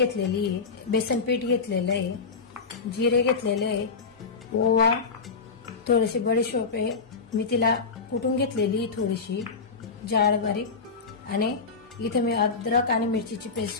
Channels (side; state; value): right; quieter; 4.9 dB